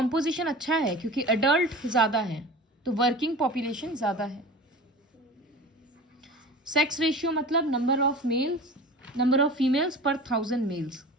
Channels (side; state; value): both; normal; correlation 0.36